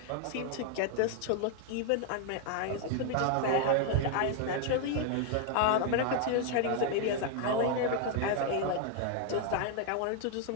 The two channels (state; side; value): different; both; correlation 0.00